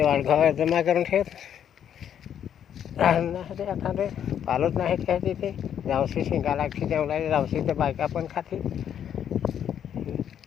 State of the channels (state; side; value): quieter; right; 9.3 dB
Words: वाडघा जमा करून ठेवत नाही ते आता ते पालत नाही काय तिथे जावशी शिंगा लागते तेवढा जावशी ते बायका पण खाते